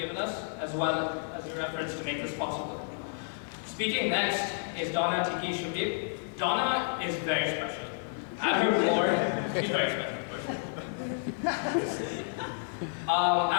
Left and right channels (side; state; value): right; silent; digital silence